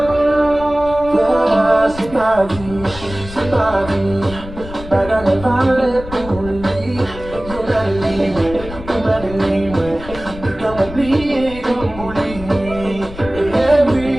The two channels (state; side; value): noise; left; rumble, 13 dB below the sound